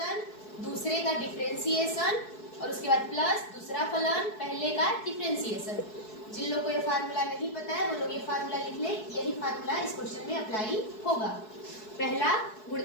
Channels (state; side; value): late; right; 4.7 ms